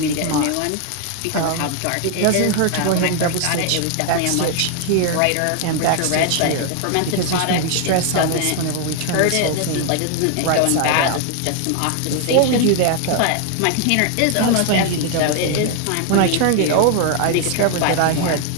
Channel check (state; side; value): different; both; correlation 0.00